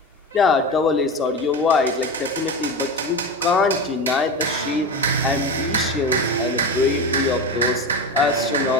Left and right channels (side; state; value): both; normal; correlation 0.24